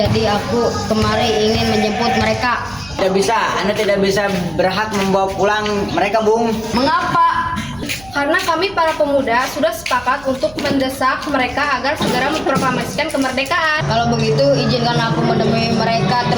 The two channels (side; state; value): right; noise; hum, 22 dB below the sound